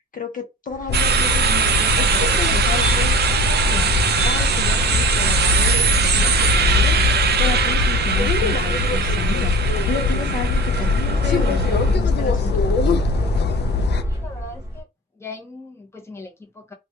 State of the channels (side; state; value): both; normal; correlation 0.36